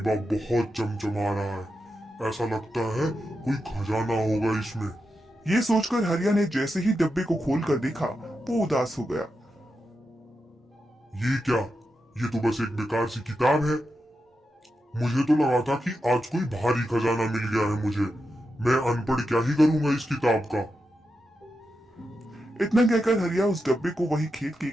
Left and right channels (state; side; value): normal; both; correlation 0.88